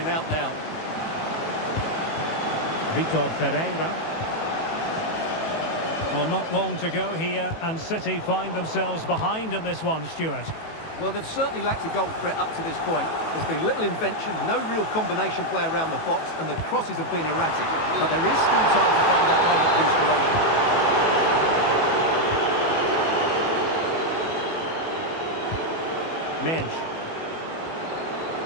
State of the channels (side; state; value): right; late; 18 ms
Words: out now. Vitor Pereira. Well, not long to go here, and City find themselves behind in this one, Stuart. Well, they've certainly lacked a goal threat up to this point. There's been little invention, no real combination play around the box, and the crosses have been erratic. But there is still time to find that moment of inspiration. Mendes.